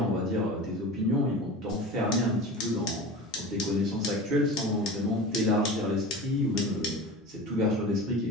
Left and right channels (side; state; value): both; normal; correlation 0.33